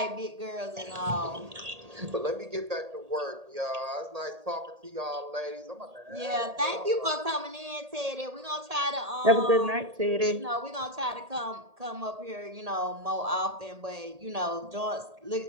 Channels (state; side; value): late; left; 1.8 ms